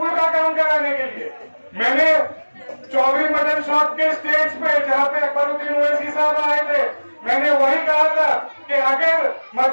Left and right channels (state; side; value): inverted; both; correlation -1.00